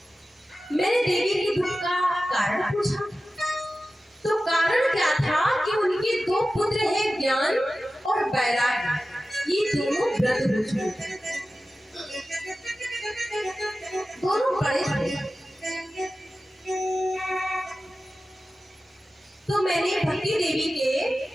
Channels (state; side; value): normal; both; correlation 0.95